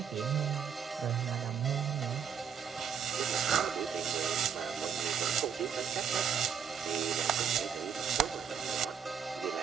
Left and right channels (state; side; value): quieter; left; 7.5 dB